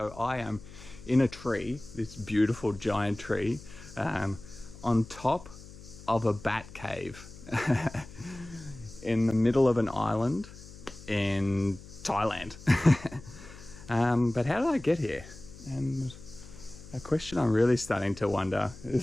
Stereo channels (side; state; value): left; noise; hum, 17 dB below the sound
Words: I am in a tree, this beautiful giant tree, on top of a bat cave in the middle of an island in Thailand. But how did I get here? And a question I'm really starting to wonder